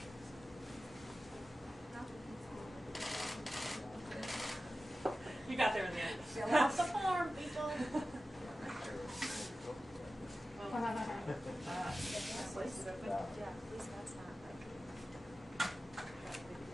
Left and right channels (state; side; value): normal; both; correlation 0.94